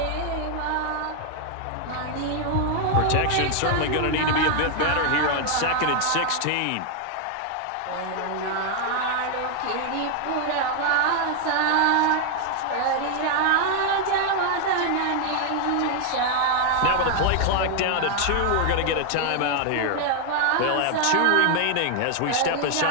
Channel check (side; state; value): both; different; correlation 0.00